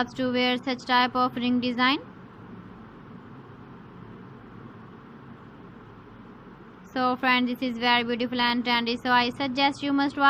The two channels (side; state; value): both; identical; correlation 1.00